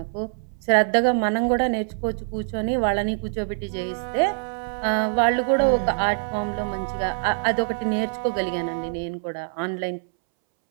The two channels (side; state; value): left; silent; 62 dB below the other